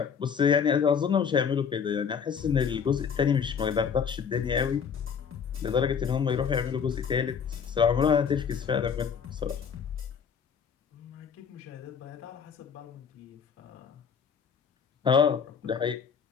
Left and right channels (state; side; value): quieter; right; 6.8 dB